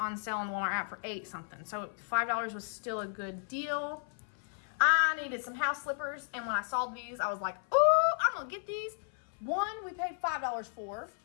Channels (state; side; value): silent; right; 55 dB below the other